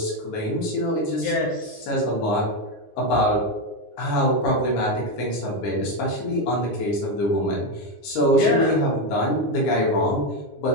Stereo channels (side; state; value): right; late; 9.8 ms